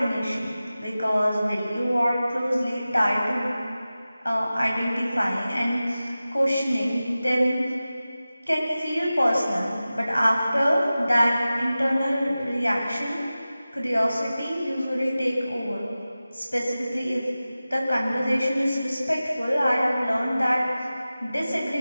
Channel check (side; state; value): both; inverted; correlation -0.96